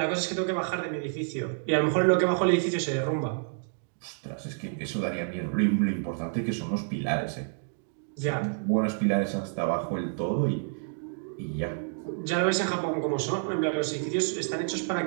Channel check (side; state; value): left; silent; 59 dB below the other